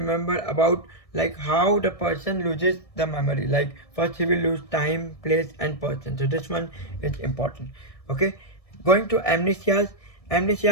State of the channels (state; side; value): late; right; 1.6 ms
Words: about like how the person loses the memory. Like first he will lose time, place and person. So this one is important. Okay, going to amnesias.